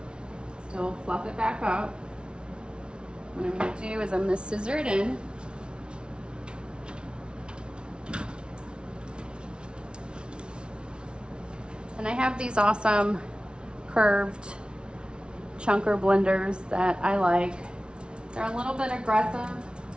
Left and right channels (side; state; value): left; late; 0.056 ms